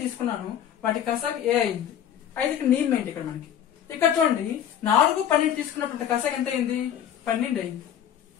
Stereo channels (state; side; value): quieter; right; 9.7 dB